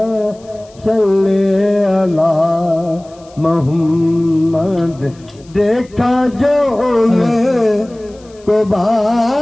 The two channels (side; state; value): left; noise; hiss, 28 dB below the sound